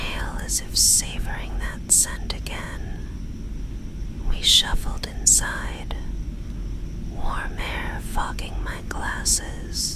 as if savoring that scent again. We shuffled inside, warm air fogging my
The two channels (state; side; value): identical; both; correlation 1.00